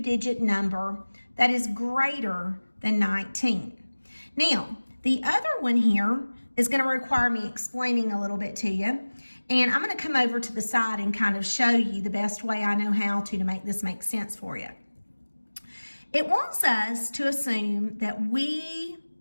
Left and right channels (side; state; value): both; inverted; correlation -1.00